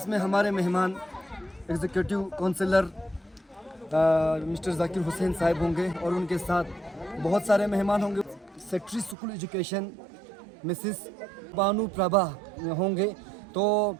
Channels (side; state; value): left; drops out; at 9.2 s